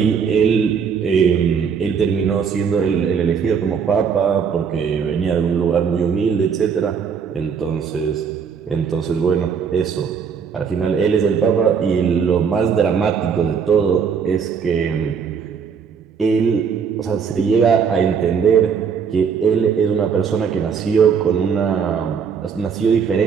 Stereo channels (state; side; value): quieter; left; 6.6 dB